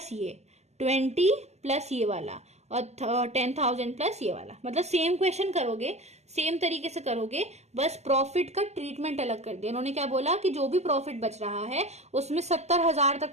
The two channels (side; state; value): left; late; 0.32 ms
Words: ये 20 प्लस ये वाला और 10,000 प्लस ये वाला। मतलब सेम क्वेश्चन करोगे, सेम तरीके से करोगे, बस प्रॉफिट का ट्रीटमेंट अलग कर दिया। उन्होंने क्या बोला कि जो भी प्रॉफिट बच रहा है उसमें 70,000